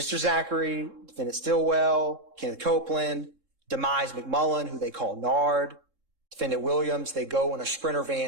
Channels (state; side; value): late; left; 3.7 ms